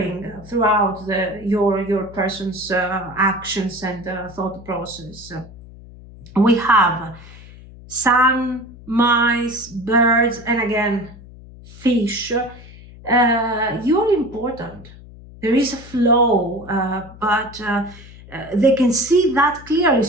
throughout your person's actions and thought process. We have sun, mice, birds, and again, fish. You're important. There is a flow, but they can see that clearly,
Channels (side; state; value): left; noise; hum, 19 dB below the sound